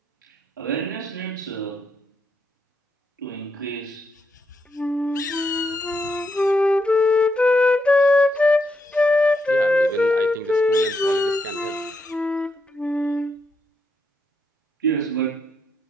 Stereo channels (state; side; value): normal; both; correlation 0.80